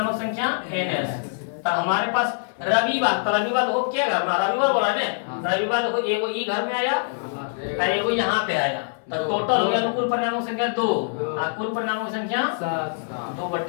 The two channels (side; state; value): right; silent; 63 dB below the other